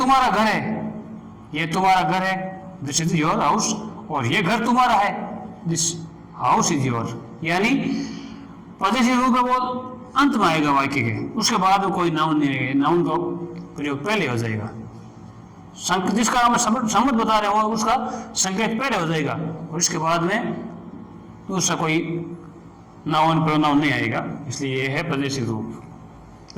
घर है, ये तुम्हारा घर है, दिस इज योर हाउस, और ये घर तुम्हारा है, दिस हाउस इज योर। यानी पॉजिटिव रूप है वो अंत में आएगा वाक्य के, उसके बाद कोई नाउन नहीं आएगा, नाउन का प्रयोग पहले हो जाएगा। जिसका हम संबंध बता रहे हो उसका संकेत पहले हो जाएगा और इसके बाद में दूसरा कोई नाउन प्रोनाउन नहीं आएगा, इसलिए ये है प्रदेशी रूप।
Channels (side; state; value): both; identical; correlation 1.00